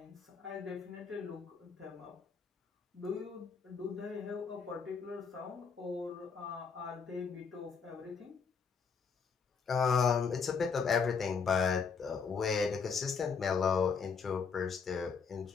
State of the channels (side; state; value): right; quieter; 5.7 dB